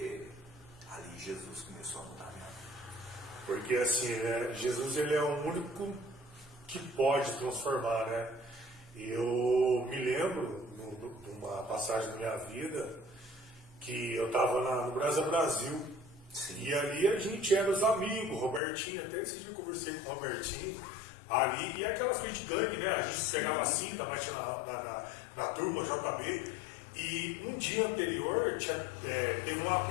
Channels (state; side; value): drops out; right; at 18.6 s